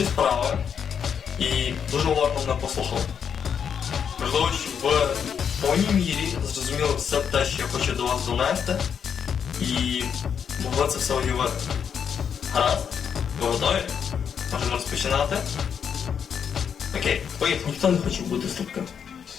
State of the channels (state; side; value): quieter; right; 7.5 dB